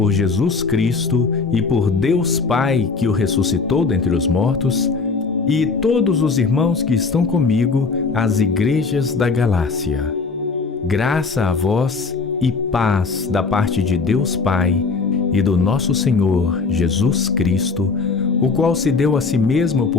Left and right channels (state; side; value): quieter; right; 4.5 dB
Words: Jesus Cristo e por Deus Pai que o ressuscitou dentre os mortos, e todos os irmãos que estão comigo, às igrejas da Galácia. Graça a vós e paz da parte de Deus Pai e do nosso Senhor Jesus Cristo, o qual se deu a si mesmo